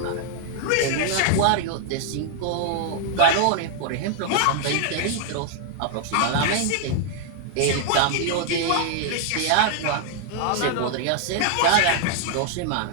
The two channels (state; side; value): different; both; correlation 0.00